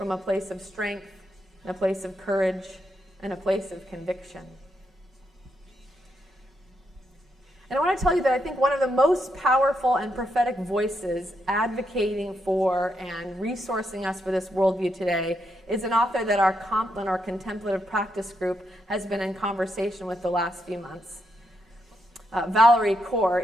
a place of strength, and a place of courage, and a place of conviction. And I want to tell you that I think one of the most powerful and prophetic voices advocating for and resourcing us for this worldview today is an author that our Compline, our contemplative practice group, has been in conversation with the last few months. Valerie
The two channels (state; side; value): normal; both; correlation 0.81